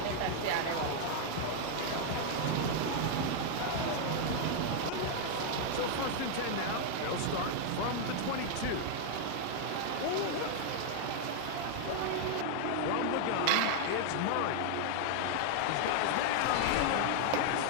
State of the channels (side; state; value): both; different; correlation 0.00